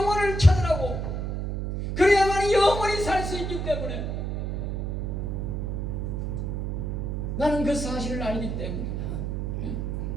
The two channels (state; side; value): noise; right; hum, 2 dB below the sound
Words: 찾으라고. 그래야만 영혼이 살 수 있기 때문에 나는 그 사실을 알기 때문에